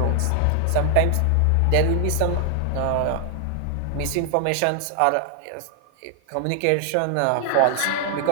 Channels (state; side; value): different; both; correlation 0.00